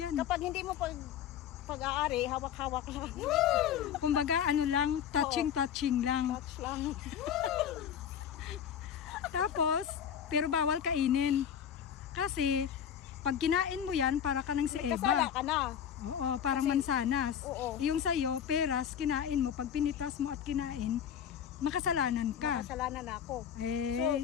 Kapag hindi mo pag-aari, hawak-hawak lang. Kumbaga ano lang, touching lang. Touch lang. Tapos, pero bawal kainin. Kasi, pag kinain mo yan, para ka ng si Kasala Eva. ka na. Oo, parang mansanas. Oo. Yung sa'yo, peras, kinain mo. Pag pinitas mo at kinain, makasalanan ka. Kasalanan na ako.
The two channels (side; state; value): right; quieter; 8.8 dB